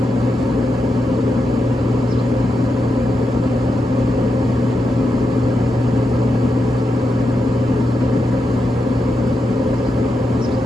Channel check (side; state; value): both; normal; correlation 0.86